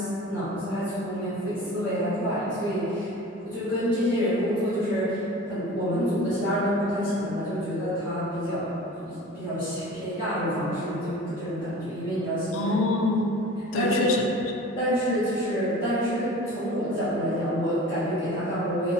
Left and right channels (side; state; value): both; normal; correlation 0.40